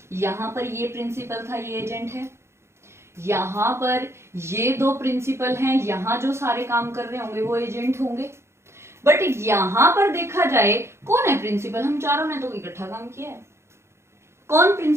यहाँ पर ये प्रिंसिपल था, ये एजेंट है, यहाँ पर ये 2 प्रिंसिपल हैं, यहाँ जो सारे काम कर रहे होंगे वो एजेंट होंगे। बट यहाँ पर देखा जाए कौन है प्रिंसिपल, हम चारों ने तो इकट्ठा काम किया है। कौन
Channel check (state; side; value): late; left; 0.13 ms